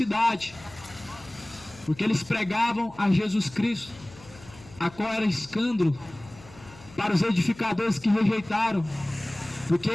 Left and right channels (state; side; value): noise; left; hum, 21 dB below the sound